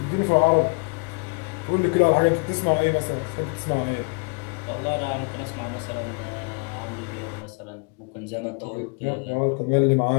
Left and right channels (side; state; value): right; quieter; 33.4 dB